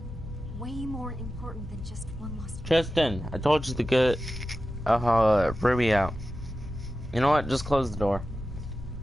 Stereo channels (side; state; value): both; normal; correlation 0.93